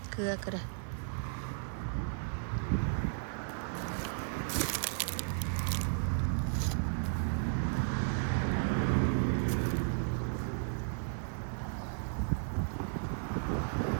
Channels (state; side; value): silent; left; 55 dB below the other